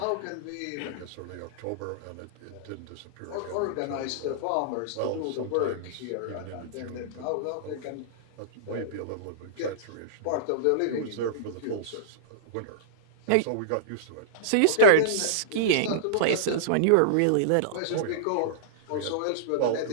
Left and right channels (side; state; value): both; different; correlation -0.03